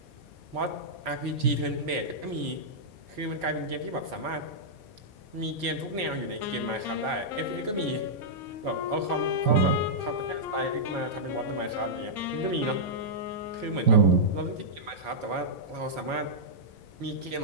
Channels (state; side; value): late; left; 4.6 ms